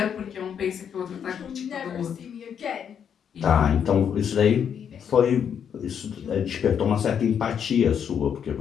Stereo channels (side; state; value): right; quieter; 8.0 dB